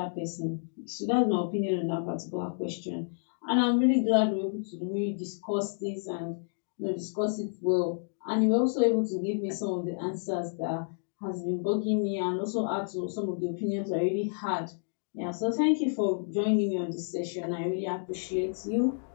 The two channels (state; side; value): silent; right; digital silence